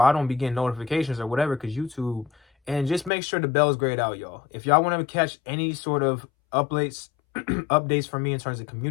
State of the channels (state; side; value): drops out; right; at 3.1 s